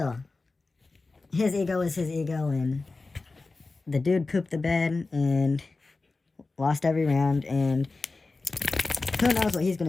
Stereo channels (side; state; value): right; quieter; 3.6 dB